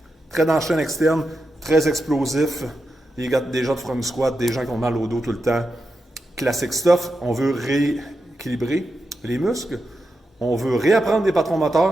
très dans la chaîne externe, très explosifs, des gens de front squat, des gens qui ont mal au dos tout le temps. Classic stuff, on veut rééquilibrer les muscles, on veut réapprendre des patrons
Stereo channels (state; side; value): normal; both; correlation 0.88